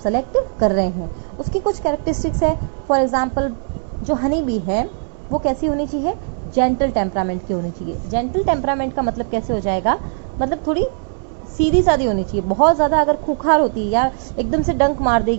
कर रहे हैं। उसकी कुछ कैरेक्टरिस्टिक्स है। फॉर एग्जांपल जो हनी बी है वो कैसी होनी चाहिए, जेंटल टेम्परामेंट की होनी चाहिए। जेंटल टेम्परामेंट का मतलब कैसे हो जाएगा, मतलब थोड़ी सीधी सादी होनी चाहिए। बहुत ज़्यादा अगर खूंखार होती है या एकदम से डंक मार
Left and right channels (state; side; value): silent; left; 66 dB below the other